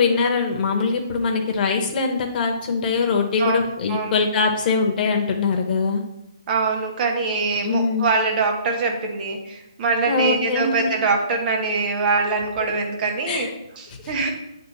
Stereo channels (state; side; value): inverted; both; correlation -0.48